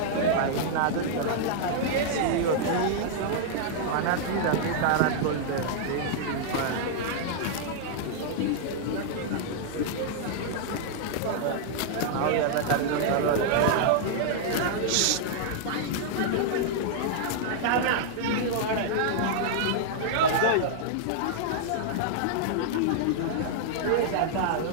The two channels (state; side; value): different; both; correlation -0.01